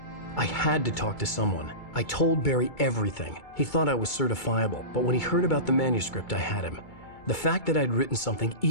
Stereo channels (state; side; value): late; right; 2.3 ms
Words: I had to talk to someone. I told Barry everything. He thought I was certifiable, but when he heard about the manuscript, I had him. The fact that I'd written something,